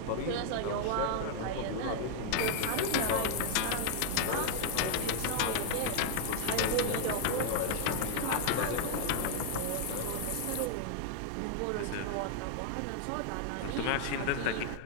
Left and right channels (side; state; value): both; different; correlation 0.00